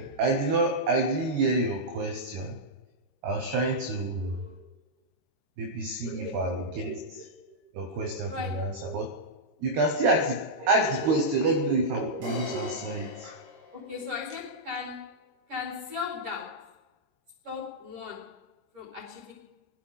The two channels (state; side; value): late; left; 13 ms